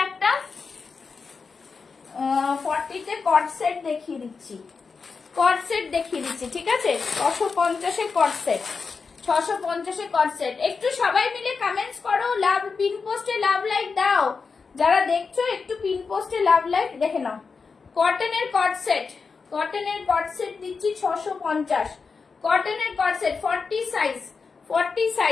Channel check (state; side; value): quieter; right; 5.0 dB